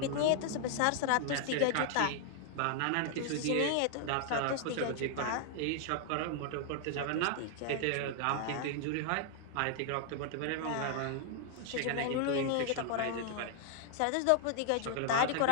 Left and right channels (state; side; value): different; both; correlation 0.00